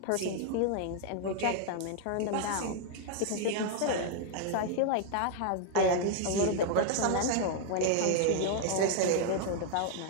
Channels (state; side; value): different; both; correlation 0.00